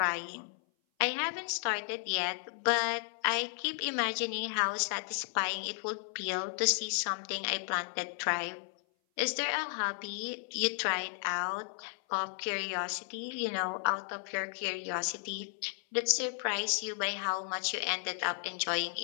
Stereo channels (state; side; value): silent; right; 55 dB below the other